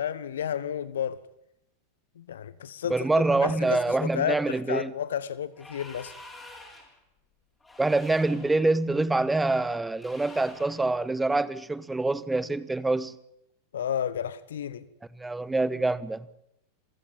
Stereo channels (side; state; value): both; normal; correlation 0.71